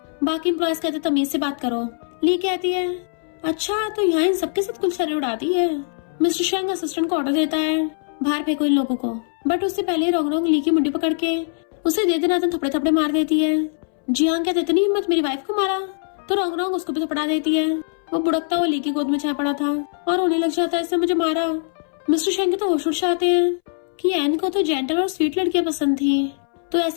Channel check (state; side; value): silent; right; 64 dB below the other